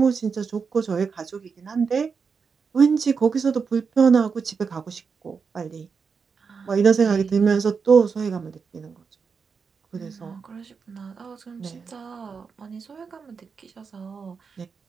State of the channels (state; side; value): quieter; left; 5.6 dB